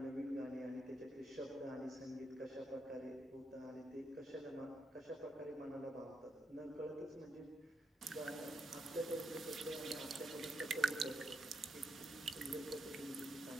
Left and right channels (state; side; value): normal; both; correlation 0.80